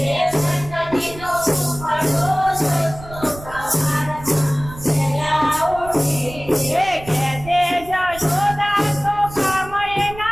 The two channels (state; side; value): noise; right; rumble, 15 dB below the sound